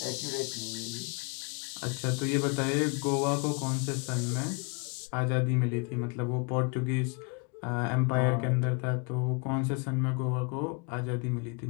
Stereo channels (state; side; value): quieter; right; 33.8 dB